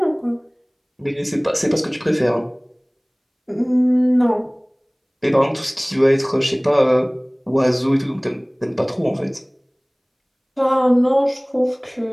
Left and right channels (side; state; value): both; identical; correlation 1.00